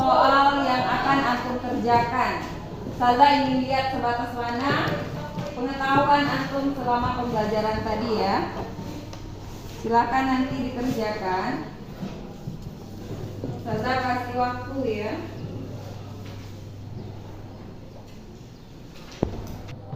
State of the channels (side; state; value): both; identical; correlation 1.00